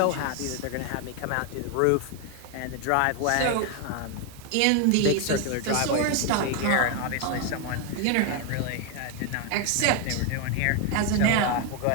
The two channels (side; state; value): both; different; correlation 0.01